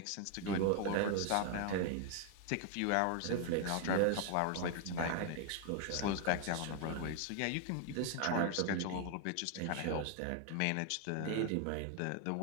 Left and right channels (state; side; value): different; both; correlation 0.00